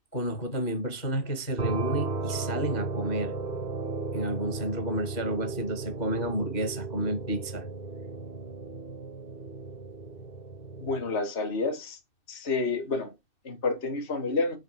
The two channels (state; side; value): late; right; 2.6 ms